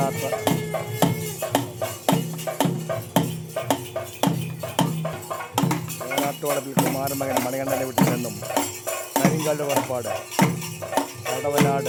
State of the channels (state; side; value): identical; both; correlation 1.00